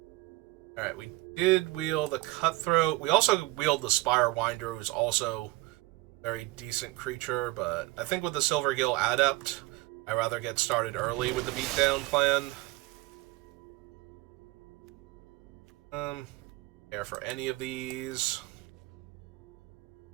Alright, we did wheel the Cutthroat. We also wheeled the Spirewinder, who's also a very decent creature, but I think with the Silvergill Adept, I'd rather get started early with the beatdown plan. Care for any of these.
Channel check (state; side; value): quieter; left; 20.5 dB